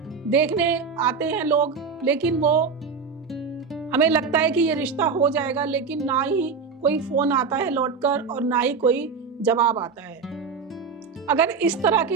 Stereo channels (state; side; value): quieter; left; 5.4 dB